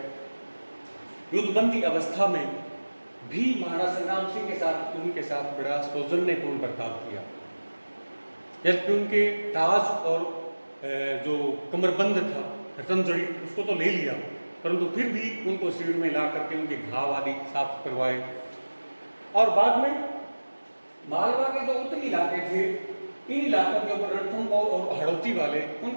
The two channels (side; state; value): both; inverted; correlation -1.00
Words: युद्धबंदी अवस्था में भी महाराणा संग्राम सिंह के साथ, उनके साथ बड़ा सौजन्यपूर्ण बर्ताव किया। जबकि उनके ताज और जो कमरबंद था, रतनजड़ी, उसको तो ले लिया, परंतु फिर भी उनको शिविर में ला करके उनके घाव आदि साफ करवाए। और बाद में मालवा के जो उत्तरी इलाके थे, इन इलाकों के ऊपर रणथंभौर और हड़ौती वाले,